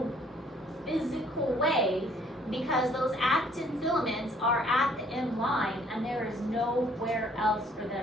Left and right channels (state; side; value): normal; both; correlation 0.61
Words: physical way, because those actin filaments are at the M line and there is nowhere else for